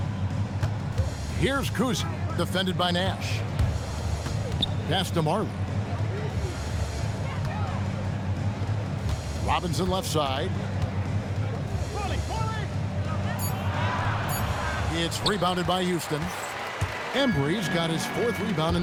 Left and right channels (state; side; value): identical; both; correlation 1.00